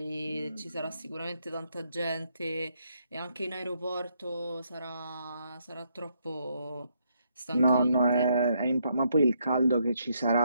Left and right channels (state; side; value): inverted; both; correlation -0.75